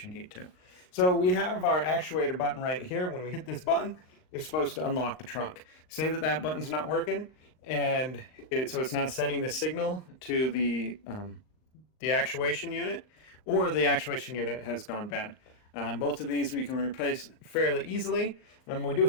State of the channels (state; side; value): late; right; 39 ms